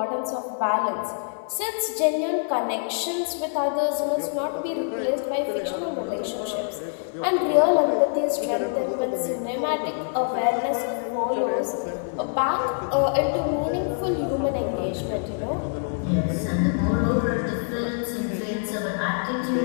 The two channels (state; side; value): silent; right; 56 dB below the other